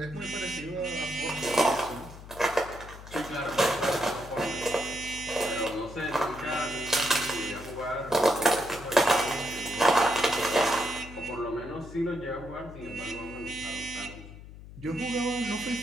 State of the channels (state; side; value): noise; left; hum, 15 dB below the sound